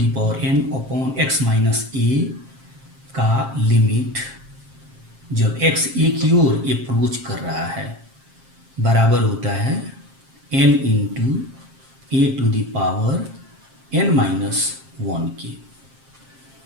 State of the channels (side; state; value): left; late; 7.5 ms